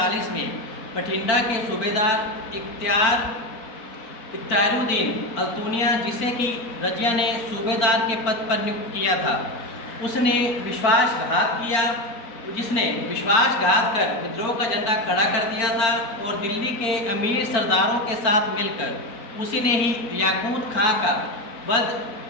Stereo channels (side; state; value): right; late; 4.4 ms